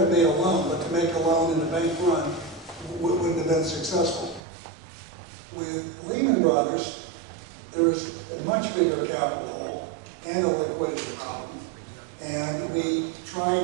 have made a loan, but to make a loan in the bank run wouldn't have been successful. With Lehman Brothers, there was a much bigger capital hole and a liquidity problem. And we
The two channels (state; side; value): drops out; left; at 4.4 s